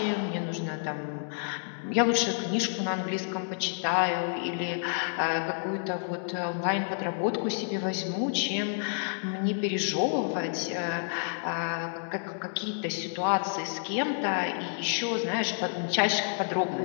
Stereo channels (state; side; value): silent; right; digital silence